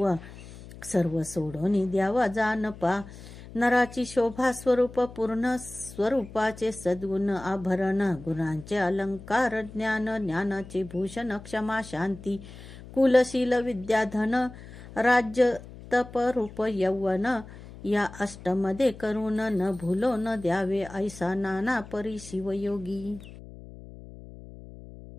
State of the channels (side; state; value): left; noise; hum, 16 dB below the sound